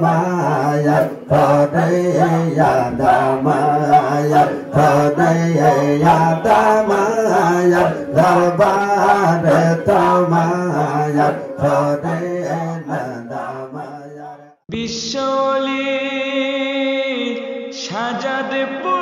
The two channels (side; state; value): both; identical; correlation 1.00